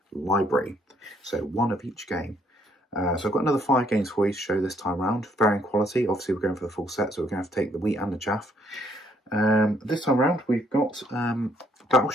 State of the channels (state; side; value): normal; both; correlation 0.68